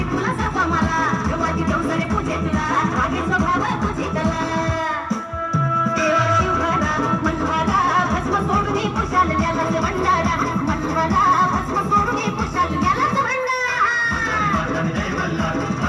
तुला सर्व मला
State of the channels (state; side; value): identical; both; correlation 1.00